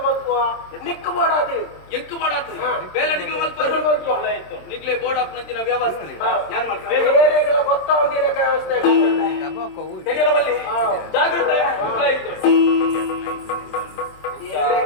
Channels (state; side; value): late; right; 27 ms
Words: ನಿಕ್ಕು ಬೋಡಾದು ಎಂಕು ಬೋಡಾದು ಬೇಲೆ ನಿಕ್ಲು ಮಲ್ಪು ನಿಕ್ಲೆ ಬೋರ್ಡ್ ಅಪ್ನಂಚಿನ ವ್ಯವಸ್ಥೆ ಯಾನ್ ಮಾಡ್ಕ ಬೇರೆಗಳ ಗೊತ್ತಾವಂದಿರ ವ್ಯವಸ್ಥೆ ತೆರಿಯಲ್ಲ ಬಲ್ಲಿ ಜಾಗೃತೆ